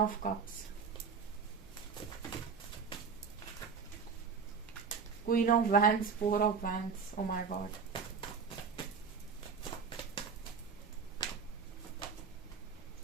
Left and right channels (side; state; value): left; quieter; 5.7 dB